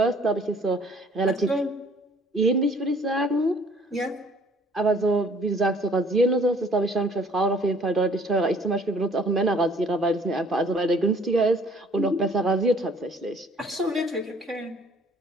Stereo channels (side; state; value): both; normal; correlation 0.56